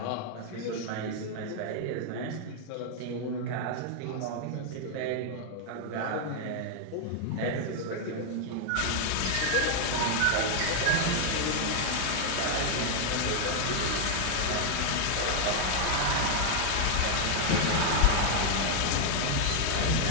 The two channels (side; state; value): both; different; correlation 0.00